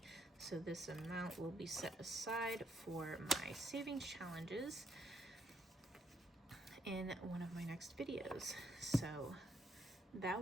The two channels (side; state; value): both; normal; correlation 0.75